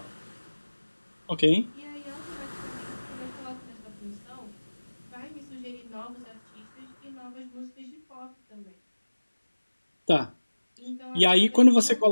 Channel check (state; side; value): inverted; both; correlation -1.00